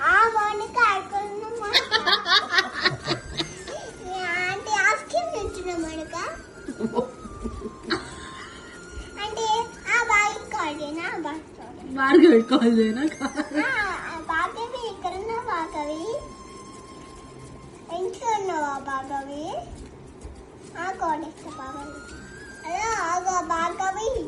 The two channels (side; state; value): both; identical; correlation 1.00